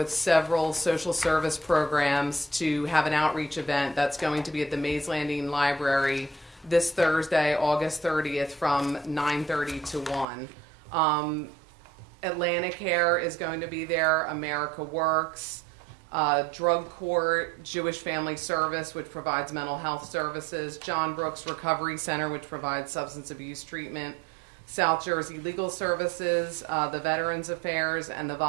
several social service programs to have an outreach event that's going to be at the Mays Landing Library this Thursday, August 30th from 9:30 to 1. Atlantic Care is going to be there, America Works, Drug Court, Jewish Family Service, which provides mental health services, John Brooks Recovery Center, which provides substance abuse treatment, South Jersey Legal Services, the Veterans Affairs, and the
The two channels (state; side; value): drops out; left; at 10.2 s